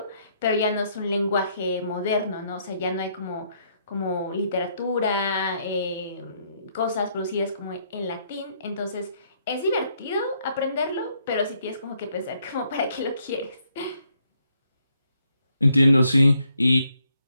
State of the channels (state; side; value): inverted; both; correlation -0.71